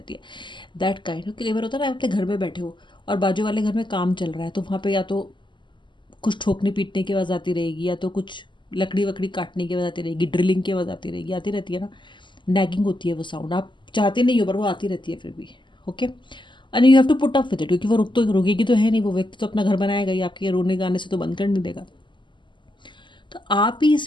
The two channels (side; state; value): right; late; 0.23 ms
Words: है, दैट काइंड। कई बार होता है ना, आप अपने घर में बैठे हो और बाजू वाले घर में काम चल रहा है, तो वहाँ पे या तो कुछ ठोकने पीटने की आवाज़ आती रहेगी, या तो कुछ लकड़ी वकड़ी काटने की आवाज़ आती रहेगी, ड्रिलिंग की आवाज़ आती रहेगी, आती रहती है ना। नैगिंग होती है वो साउंड, आप चाहते नहीं हो पर वो आती रहती है फिर भी। Okay, and you have to put up with it, क्योंकि वो रुकेगी तो है नहीं, वो व्यक्ति तो अपना घर बनाएगा ही, आपके रोने गाने से तो बंद कर नहीं देगा। तो आप ही